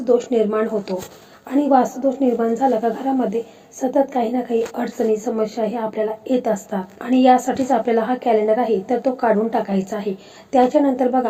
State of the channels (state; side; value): identical; both; correlation 1.00